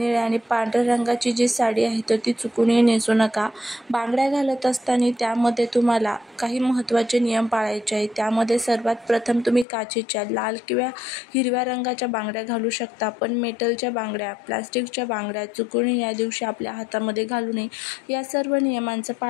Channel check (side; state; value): right; drops out; at 9.7 s